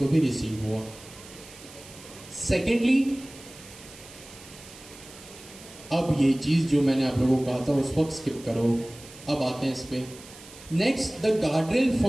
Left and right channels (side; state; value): right; noise; hiss, 19 dB below the sound